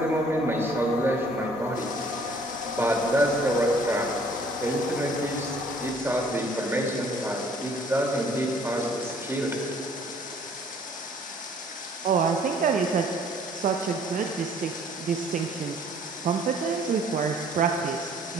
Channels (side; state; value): both; normal; correlation 0.57